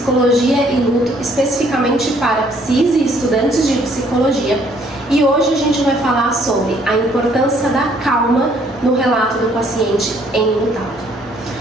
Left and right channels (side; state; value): both; normal; correlation 0.64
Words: e luto, especificamente para psis e estudantes de psicologia. E hoje a gente vai falar sobre a importância da calma no relato do paciente enlutado.